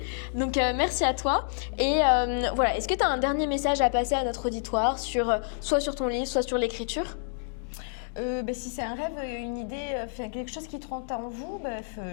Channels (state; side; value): silent; right; digital silence